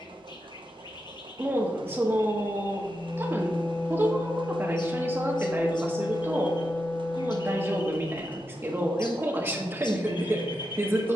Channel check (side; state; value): both; normal; correlation 0.87